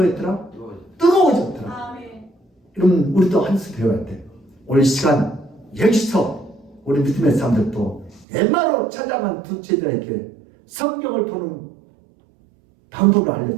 뜨거워졌더라. 그러면 우리도 한 수 배워야 돼. 오늘 시간 여기서 우리 믿음의 사람들도 엠마로 찾아간 두 제자에게 성경을 보는 방법을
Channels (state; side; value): drops out; left; at 8.2 s